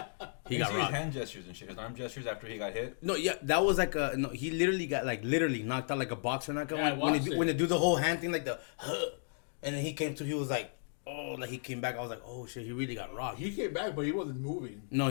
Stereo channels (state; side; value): silent; right; digital silence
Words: You can see his hand gestures and shit, his arm gestures after he got hit. No, yeah, that was like a no. He literally got literally knocked out like a boxer knockout. Yeah, I when watched they, it. when they do the whole hand thing, like the, and then he came to. He was like, oh, like he came back. I was like, oh shit, he really got rocked. He came back, but he wasn't moving. No,